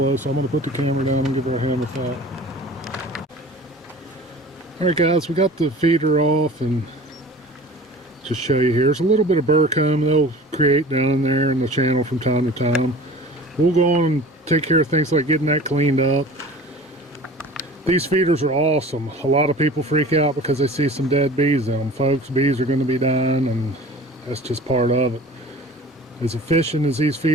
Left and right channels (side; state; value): both; normal; correlation 0.42